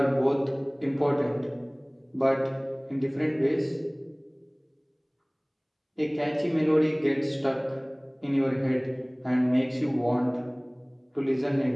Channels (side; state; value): both; identical; correlation 1.00